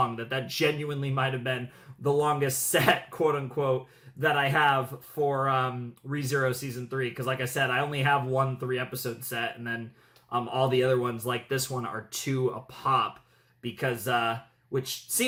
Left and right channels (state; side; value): identical; both; correlation 1.00